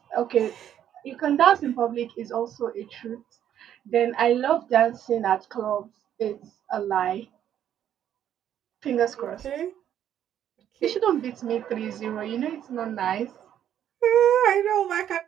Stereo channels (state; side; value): quieter; left; 10.3 dB